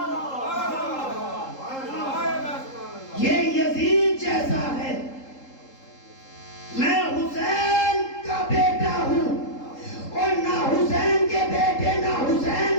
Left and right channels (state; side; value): late; right; 3.8 ms